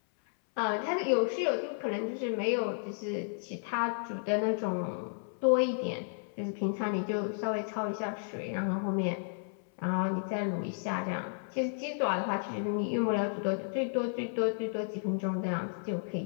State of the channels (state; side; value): silent; right; 56 dB below the other